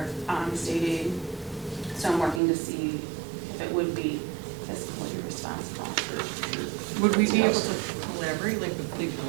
state aid. So I'm working to see if it would be fiscally responsible. Would we be able to collaborate, like with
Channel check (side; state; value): left; drops out; at 2.4 s